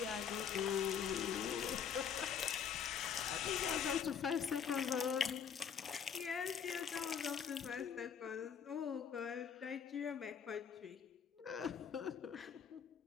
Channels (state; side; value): quieter; right; 7.4 dB